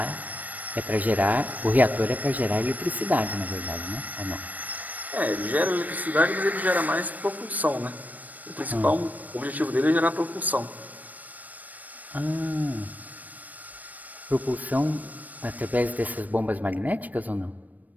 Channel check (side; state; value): left; late; 0.079 ms